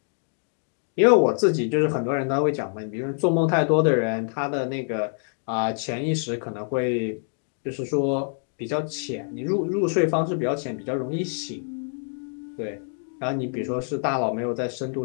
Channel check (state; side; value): silent; right; 61 dB below the other